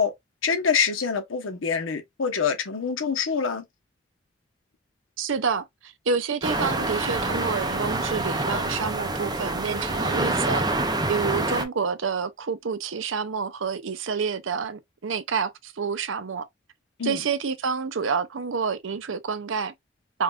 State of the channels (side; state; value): both; normal; correlation -0.10